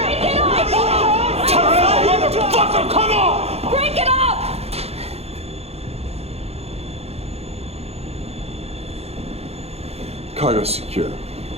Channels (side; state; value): left; late; 0.30 ms